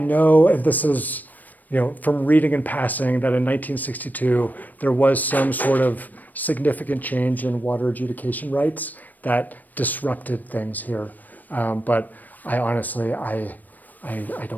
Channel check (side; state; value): right; late; 0.084 ms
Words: and this is, from reading and passing, that in 1962 there was some sort of significant change in water adjudication rights that disrupted things here. But I honestly, I